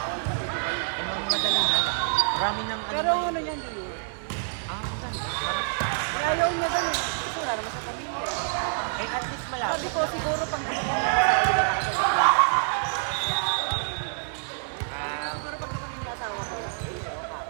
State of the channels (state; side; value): silent; left; digital silence